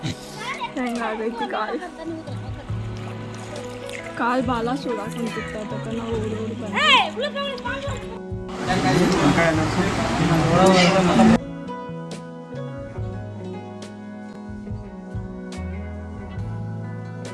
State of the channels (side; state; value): both; identical; correlation 1.00